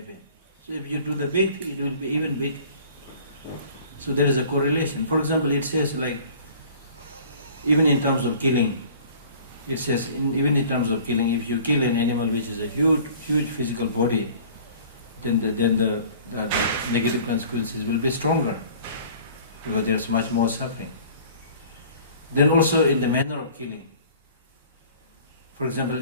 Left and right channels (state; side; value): inverted; both; correlation -0.48